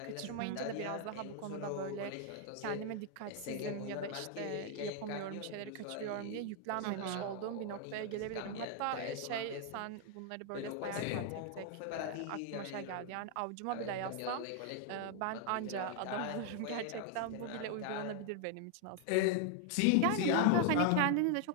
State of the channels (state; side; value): different; both; correlation 0.00